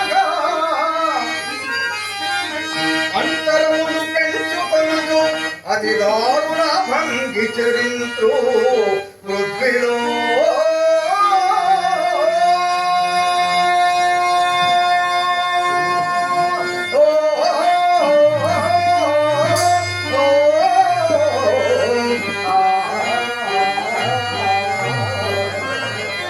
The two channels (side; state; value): both; identical; correlation 1.00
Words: అంతరములు పెంచుకొనుచు అతి దారుణ భంగి చరింతు పృథ్వీలో.